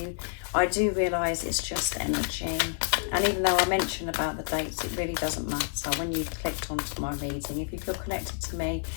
I do realise it's just energy. And even though I mention about the dates, it really doesn't matter. When you've clicked onto my reading, if you feel connected to me,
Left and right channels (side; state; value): right; silent; 59 dB below the other